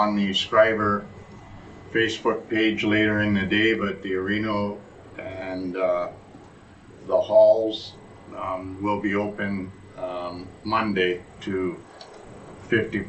the Schreiber Facebook page later in the day, but the arena and the halls will be open Monday to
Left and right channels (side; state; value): both; identical; correlation 1.00